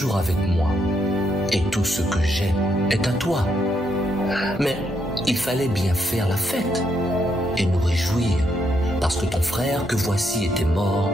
avec moi et tout ce que j'ai est à toi. Mais il fallait bien faire la fête et nous réjouir parce que ton frère que voici était mort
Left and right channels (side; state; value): both; normal; correlation 0.77